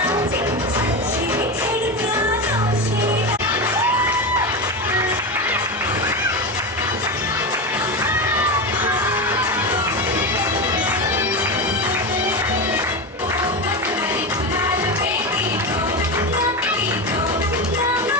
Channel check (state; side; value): normal; both; correlation 0.18